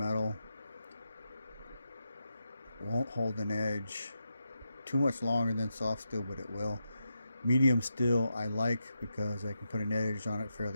Won't hold an edge too much longer than soft steel, but it will. Medium steel I like because I can put an edge on it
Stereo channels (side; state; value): both; inverted; correlation -0.86